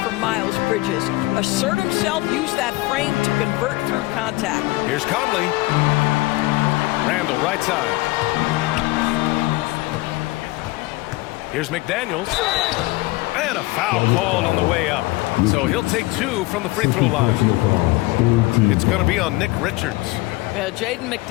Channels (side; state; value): right; quieter; 20.8 dB